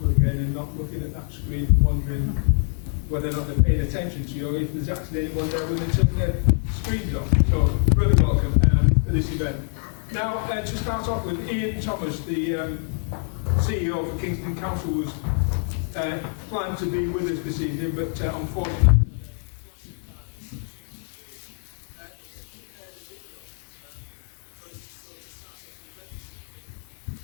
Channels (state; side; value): silent; right; 62 dB below the other